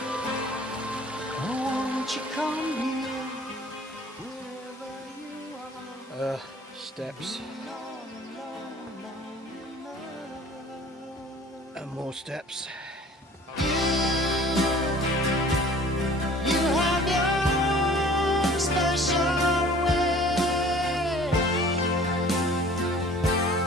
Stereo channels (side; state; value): both; normal; correlation 0.49